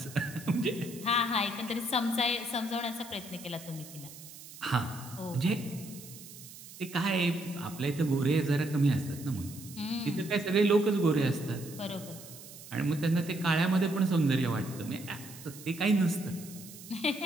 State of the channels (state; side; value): noise; right; hiss, 16 dB below the sound